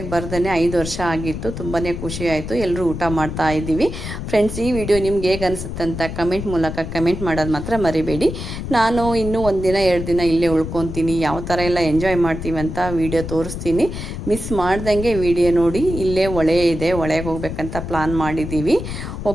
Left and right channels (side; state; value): left; noise; rumble, 7 dB below the sound